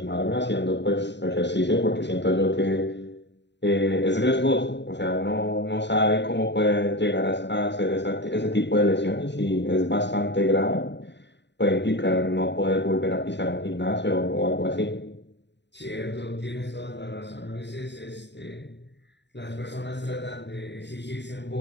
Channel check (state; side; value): late; right; 0.51 ms